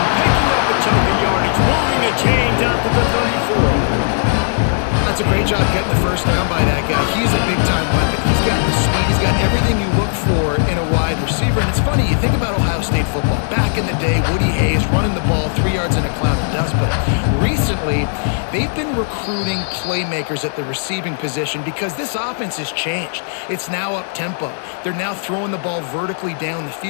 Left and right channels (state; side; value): silent; right; digital silence